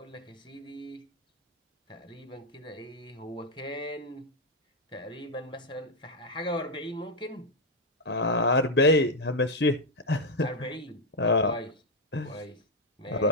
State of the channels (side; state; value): both; normal; correlation 0.02